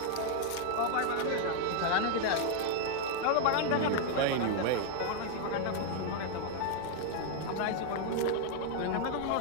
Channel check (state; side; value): different; both; correlation 0.00